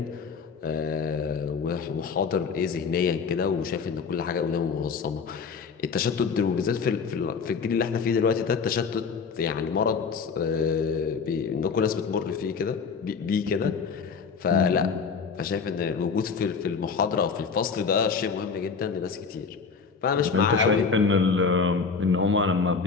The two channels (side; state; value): right; quieter; 5.4 dB